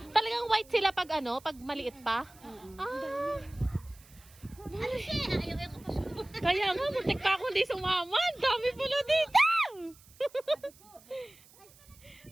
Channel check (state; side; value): noise; right; hiss, 25 dB below the sound